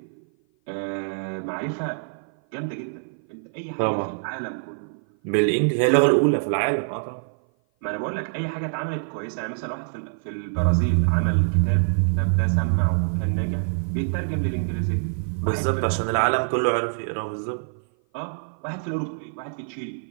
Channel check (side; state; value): left; silent; 56 dB below the other